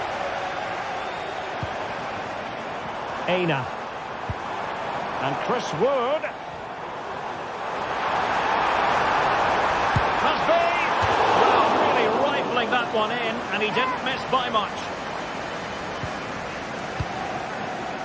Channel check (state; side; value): identical; both; correlation 1.00